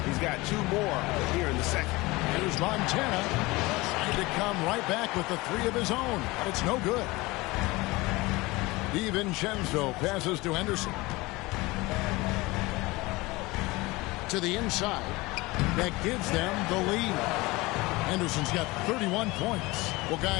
he's got 2 more here in the second. Here's Montana. To come right back with the 3 of his own, but it's no good. DiVincenzo passes to Henderson. To the inside. That gives them the lead. Henderson's got 31 points. Well,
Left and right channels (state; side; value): quieter; right; 22.0 dB